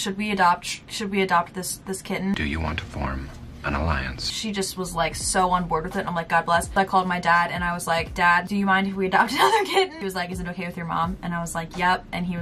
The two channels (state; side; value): identical; both; correlation 1.00